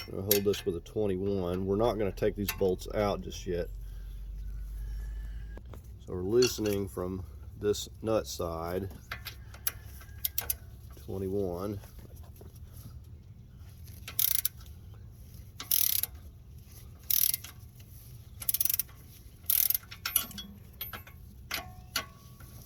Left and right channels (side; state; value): both; identical; correlation 1.00